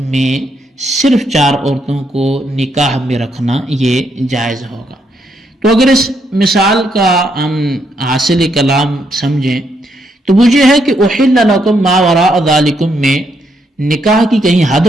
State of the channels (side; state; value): both; normal; correlation 0.76